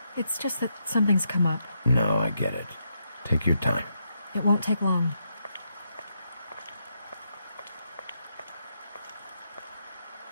It's just that something's come up. No, I get it. Take your time. It won't take long.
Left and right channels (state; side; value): inverted; both; correlation -0.80